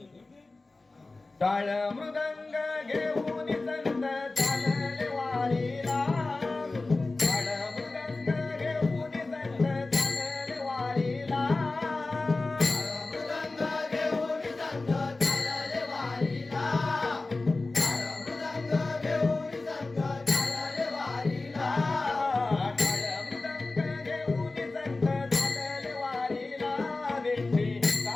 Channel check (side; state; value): right; quieter; 3.3 dB